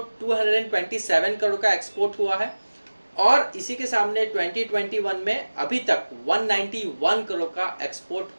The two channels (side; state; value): both; inverted; correlation -1.00